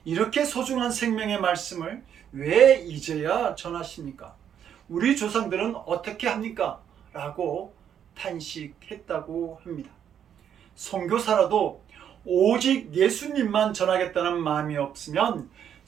이렇게 소중한 생명의 말씀을 왜 이제야 전하십니까? 우리 조상들은 어떻게 합니까? 라고 탄식했다고 합니다. 선교사라도 오직 예수님만 전하겠다는 마음이 없으면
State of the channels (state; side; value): quieter; left; 9.0 dB